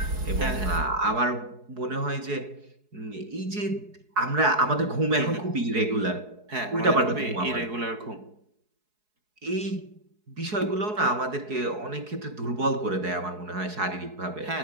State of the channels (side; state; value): left; late; 4.7 ms